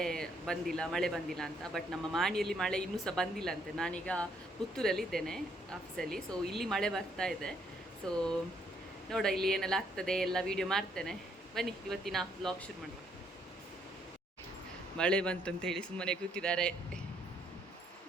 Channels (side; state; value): both; normal; correlation 0.70